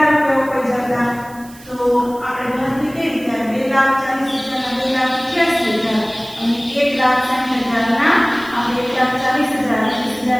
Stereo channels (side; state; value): right; noise; hiss, 22 dB below the sound